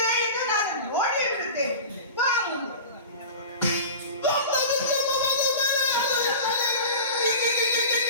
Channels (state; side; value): inverted; both; correlation -0.34